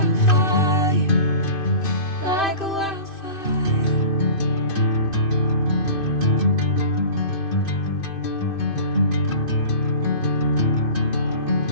like a wildfire.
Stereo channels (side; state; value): right; late; 2.5 ms